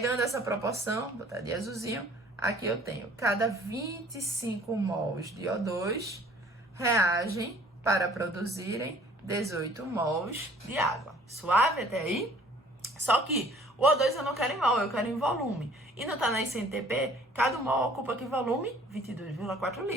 essa proporção, botar de azulzinho, aqui eu tenho cada 25 mols de O2 reagem para produzirem 18 mols de água. Suave até aí? Só que o O2 eu não quero em mol, eu quero em volume. E não tá na SNTP, cada mol ocupa que volume? 22,4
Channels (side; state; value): both; normal; correlation 0.54